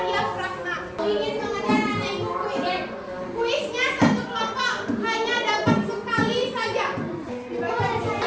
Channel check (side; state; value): both; identical; correlation 1.00